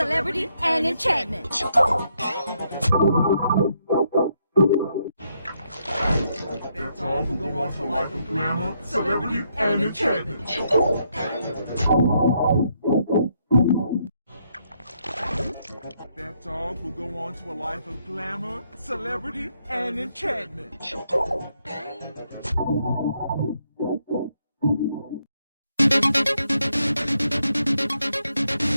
and enchantment. That dog will go on to a life of glamour, celebrity, and enchantment. That dog will go on to a life of glamour, celebrity, and enchantment.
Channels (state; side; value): inverted; both; correlation -0.76